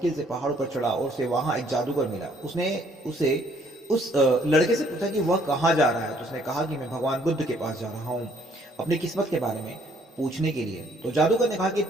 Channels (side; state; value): both; normal; correlation 0.63